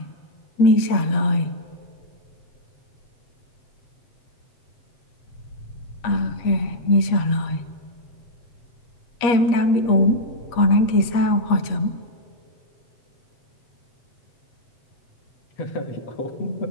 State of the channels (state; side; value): late; right; 8.4 ms